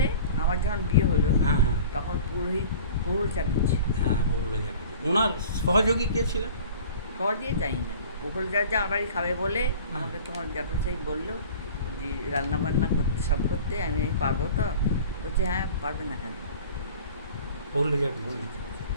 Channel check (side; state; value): both; inverted; correlation -0.42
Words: আমার যখন বিয়ে হলো, হ্যাঁ হ্যাঁ তখন পুরোহিত প্রহুল চাটুর্যে। হ্যাঁ, বললো যাবে। ওনার সহযোগী কে ছিলেন? সহজে জানি না, প্রহুল চাটুর্যে আমার বাড়ি খাবে বলে হ্যাঁ। আমাকে তোমার জ্যাঠামশাই বললো যে রান্না বান্না করতে সব করতে, আমি পারবো তো? বলছে হ্যাঁ পারবে না কেন। বললো যাবে।